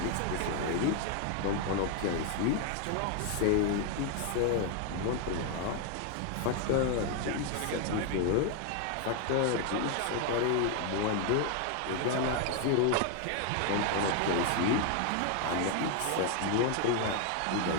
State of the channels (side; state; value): both; different; correlation 0.01